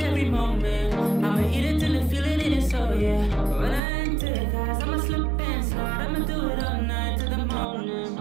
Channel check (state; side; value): drops out; left; at 3.8 s